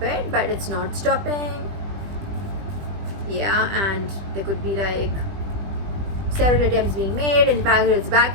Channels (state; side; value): late; left; 20 ms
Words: it, but it's not stopping. Yeah, and there could be like several attempts being made, in fact it's